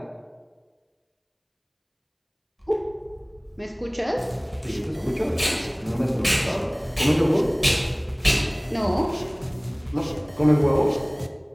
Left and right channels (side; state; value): both; identical; correlation 1.00